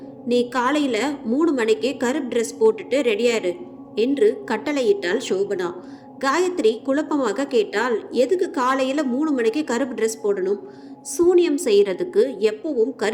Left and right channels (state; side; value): identical; both; correlation 1.00